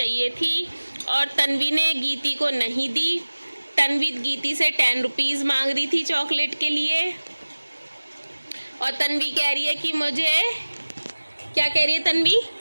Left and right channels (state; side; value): inverted; both; correlation -1.00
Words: थी, और तन्वी ने गीती को नहीं दी। तन्वी गीती से 10 रुपीज़ मांग रही थी चॉकलेट के लिए, और तन्वी कह रही है कि मुझे, क्या कह रही है तन्वी?